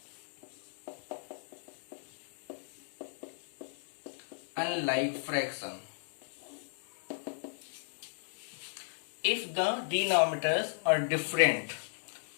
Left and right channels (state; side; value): silent; right; 54 dB below the other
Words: Unlike fraction. If the denominators are different,